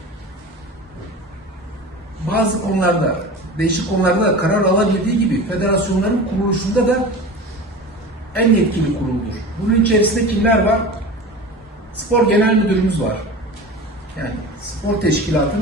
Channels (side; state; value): both; normal; correlation 0.33